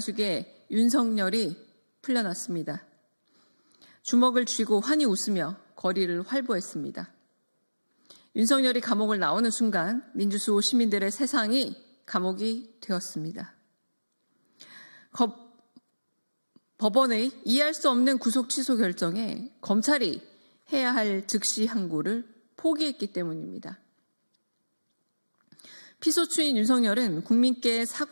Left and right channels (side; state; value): both; inverted; correlation -1.00